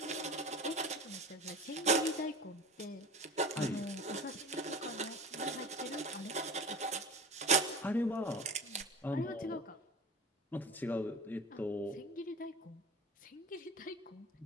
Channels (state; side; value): normal; both; correlation 0.33